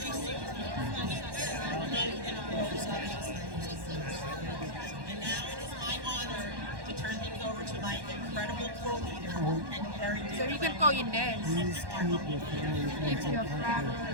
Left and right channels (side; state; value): left; late; 1.1 ms